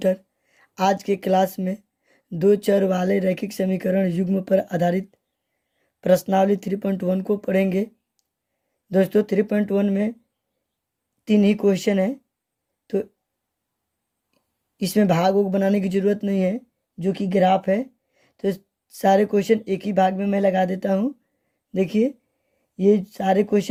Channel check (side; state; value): both; identical; correlation 1.00